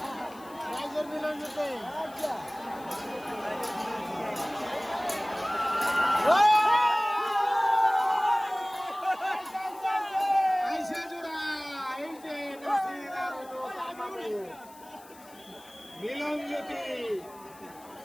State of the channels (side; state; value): left; noise; hiss, 23 dB below the sound